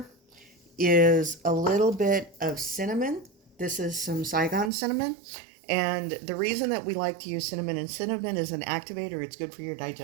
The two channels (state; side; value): drops out; left; at 4.7 s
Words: is a little bit of cinnamon. This is some Saigon cinnamon. And the reason that we like to use cinnamon, and cinnamon is an activator, it's good for your